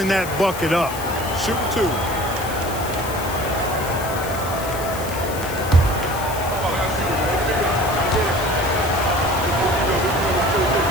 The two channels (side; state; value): left; noise; hiss, 12 dB below the sound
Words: that bucket up. Shoot 2.